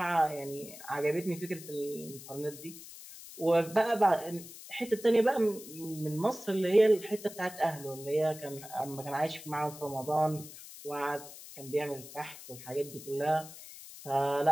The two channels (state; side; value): noise; left; hiss, 15 dB below the sound